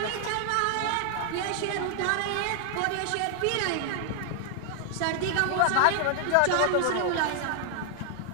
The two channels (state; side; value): different; both; correlation 0.00